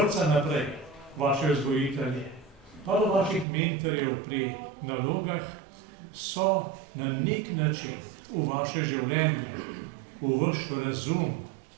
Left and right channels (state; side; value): drops out; left; at 3.5 s